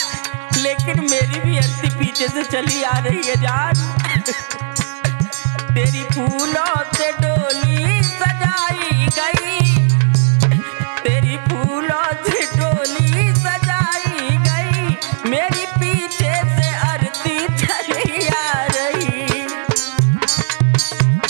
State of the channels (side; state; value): left; silent; digital silence